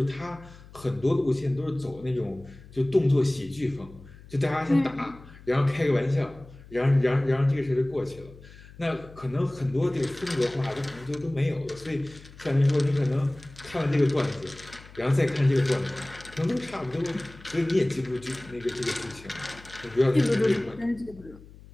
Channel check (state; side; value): noise; left; hum, 20 dB below the sound